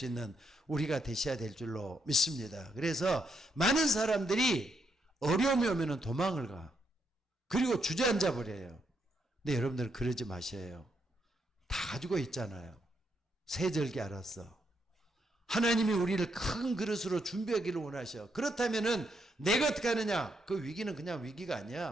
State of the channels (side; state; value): both; normal; correlation 0.78